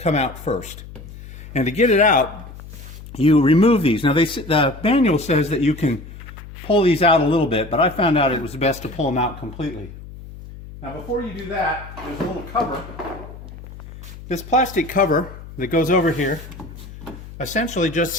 out first. And to get it out, you remove these. Now the manual says that you can pull these out a little bit, but I found out it was best to pull them out completely. Now before you do that, there's a little cover. This plastic cover that goes over here essentially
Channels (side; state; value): left; noise; hum, 15 dB below the sound